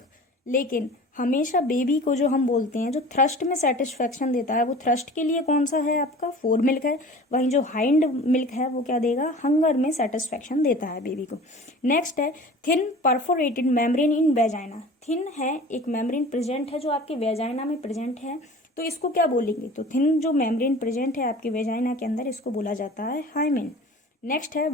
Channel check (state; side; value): normal; both; correlation 0.41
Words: लेकिन हमेशा बेबी को जो हम बोलते हैं जो थ्रस्ट में सेटिस्फेक्शन देता है, वो थ्रस्ट के लिए कौन सा है आपका, फोर मिल्क है। वहीं जो हाइंड मिल्क है वो क्या देगा, हंगर में सेटिस्फेक्शन देता है बेबी को। नेक्स्ट है thin perforated membrane in vagina, thin है एक मेम्ब्रेन प्रेजेंट है जो आपके वेजाइना में प्रेजेंट है, तो इसको क्या बोलेंगे, तो थिन जो मेम्ब्रेन प्रेजेंट है आपके वेजाइना के अंदर, इसको बोला जाता है हाइमेन। नेक्स्ट है